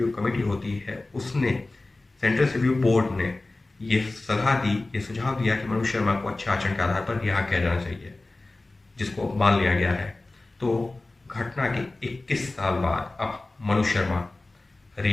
कमेटी होती है, उसने, सेंटेंस रिव्यू बोर्ड ने ये सलाह दी, ये सुझाव दिया कि मनोज शर्मा को अच्छे आचरण के आधार पर रिहा किया जाना चाहिए, जिसको मान लिया गया है। तो घटना के 21 साल बाद अब मनोज शर्मा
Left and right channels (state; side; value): quieter; right; 3.0 dB